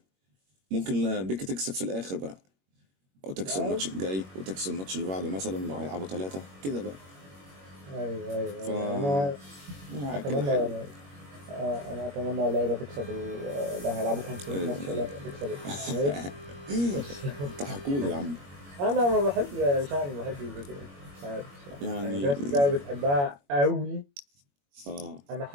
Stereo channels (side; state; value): left; late; 21 ms